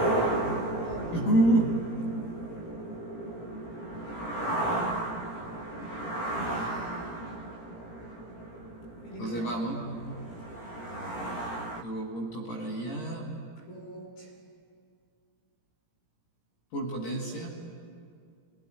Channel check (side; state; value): right; late; 17 ms